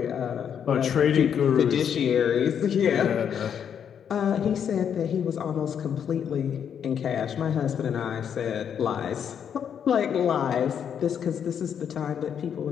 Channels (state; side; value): quieter; right; 8.2 dB